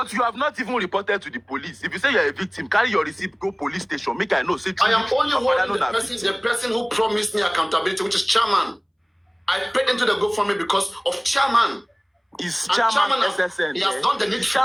you have not even reported to the police. If you say you're a victim, carry your receipt, go police station. Make I know. Say I am only holding Papariano the person who promised me accountability, which is chairman. I paid into the GoFundMe because of chairman. Is And chairman has, SSN? he has done the Is needful.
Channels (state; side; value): identical; both; correlation 1.00